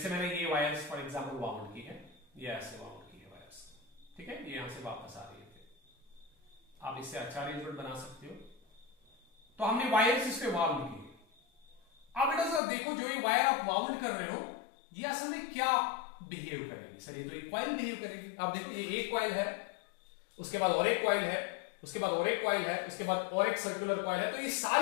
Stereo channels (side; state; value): right; drops out; at 12.6 s